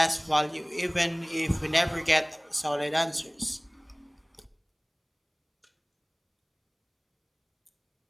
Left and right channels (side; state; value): both; identical; correlation 1.00